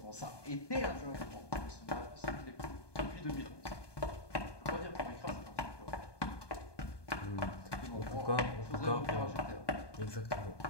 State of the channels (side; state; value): right; late; 1.2 ms